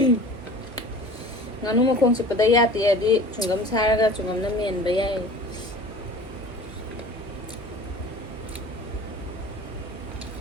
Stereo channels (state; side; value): normal; both; correlation 0.42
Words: ꯉꯥꯅꯨ ꯃꯈꯣꯡ ꯆꯤꯛꯄꯗ ꯌꯥ ꯇꯦꯛꯑꯗꯤ ꯆꯨꯡꯒꯝ ꯁꯥꯔꯒ ꯆꯨꯡꯒꯝꯅ ꯃꯦꯟꯕ ꯌꯥꯏ